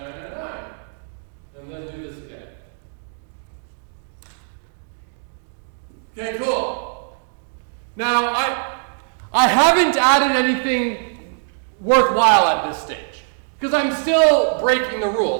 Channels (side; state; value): left; silent; digital silence